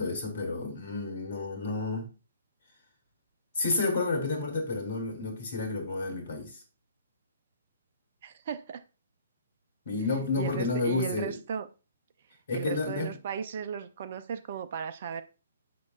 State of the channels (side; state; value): both; inverted; correlation -0.50